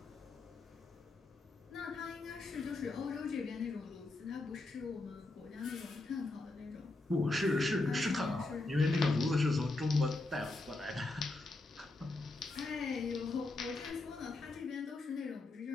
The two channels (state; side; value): quieter; right; 3.1 dB